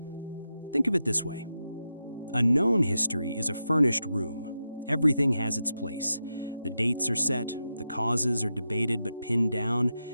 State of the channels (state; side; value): inverted; both; correlation -0.88